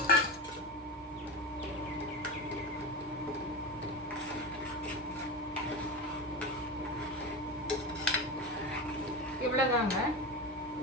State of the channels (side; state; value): both; normal; correlation 0.22